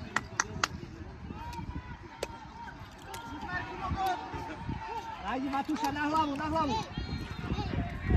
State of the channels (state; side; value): identical; both; correlation 1.00